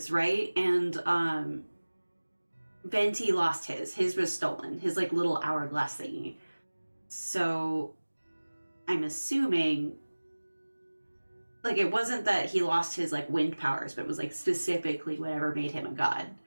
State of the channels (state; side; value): inverted; both; correlation -1.00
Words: right? And Venti lost his. His was stolen. His like little hourglass thingy. So I'm assuming like it wasn't that he lost his like wind powers, but it was like specifically whatever made him a god.